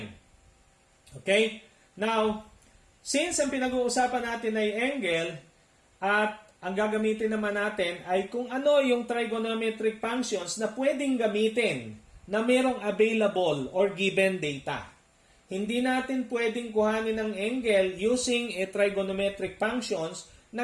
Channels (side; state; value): both; identical; correlation 1.00